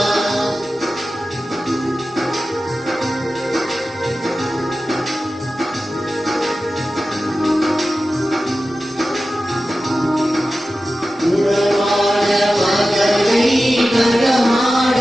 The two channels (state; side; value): normal; both; correlation 0.94